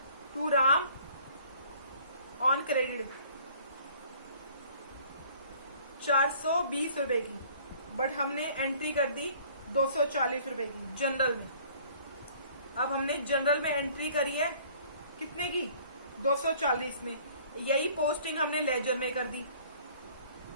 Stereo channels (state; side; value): inverted; both; correlation -0.54